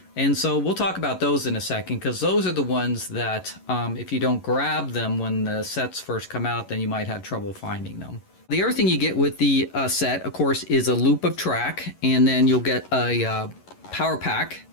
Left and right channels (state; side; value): late; right; 11 ms